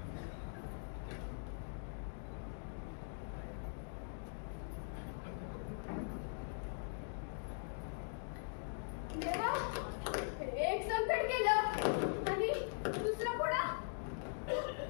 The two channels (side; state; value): right; silent; digital silence